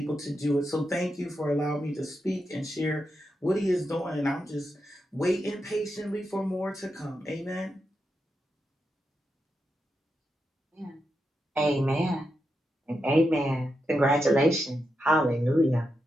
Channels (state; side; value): normal; both; correlation 0.86